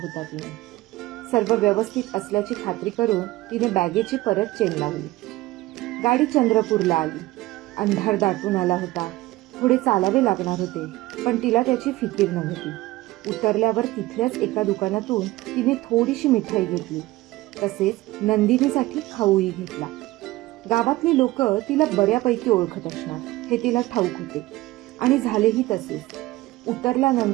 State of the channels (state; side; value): quieter; left; 18.4 dB